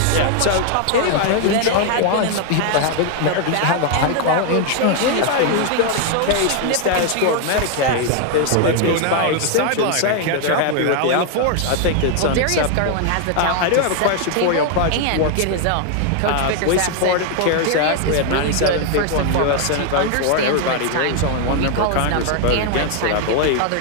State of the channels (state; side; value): different; both; correlation 0.00